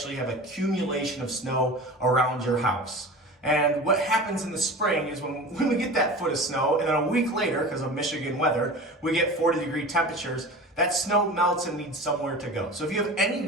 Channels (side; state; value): both; normal; correlation 0.34